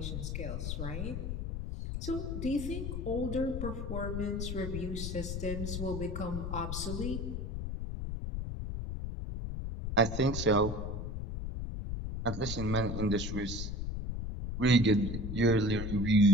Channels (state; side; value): noise; left; rumble, 4 dB below the sound